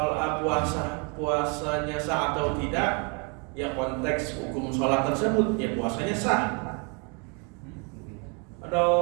puasanya sah atau tidak, ya konteks hukum sholat tersebut, ya puasanya sah. Ada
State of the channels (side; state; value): left; quieter; 34.4 dB